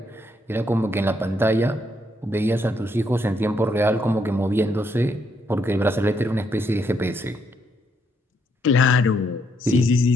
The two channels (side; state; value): both; normal; correlation 0.74